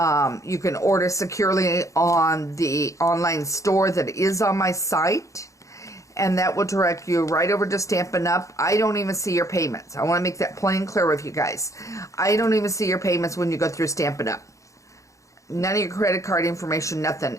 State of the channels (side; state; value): right; late; 0.15 ms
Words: You can order securely on the online store that is on my site, and that will direct you right over to Stampin' Up. I don't even see your payments. I want to make that plain clear with you guys. I don't even see your payments when you go through Stampin' Up. None of your credit card information, nothing